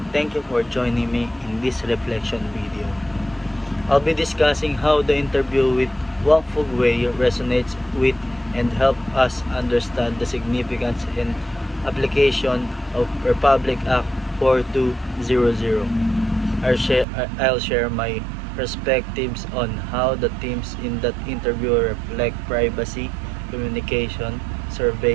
thank you for joining me in this reflection video. I'll be discussing how the interview with Wang Fugwei resonates with and help us understand the significance and application of Republic Act 4200. I'll share my perspectives on how the themes in that interview reflect privacy, communication,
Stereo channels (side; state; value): left; drops out; at 17.1 s